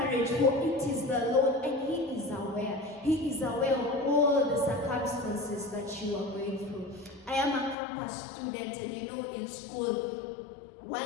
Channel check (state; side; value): drops out; right; at 7.8 s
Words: for it is the Lord, and He is aware. He is aware of all the circumstances that you are going through. I am a campus student, and in school,